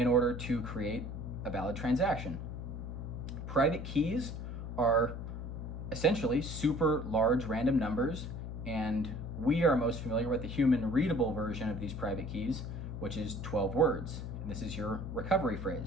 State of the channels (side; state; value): left; noise; hum, 6 dB below the sound